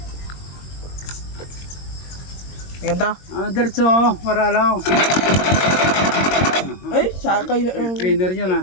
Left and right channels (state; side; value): late; right; 22 ms